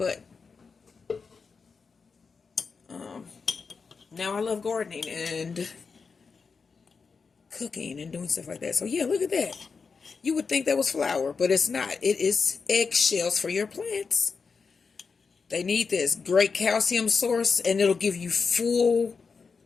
now I love gardening and cooking and doing stuff like that. So yeah, look at that. You would think that was flour, but it's not. It is eggshells for your plants. They need this great calcium source, and it'll give you full,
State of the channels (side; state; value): right; quieter; 5.1 dB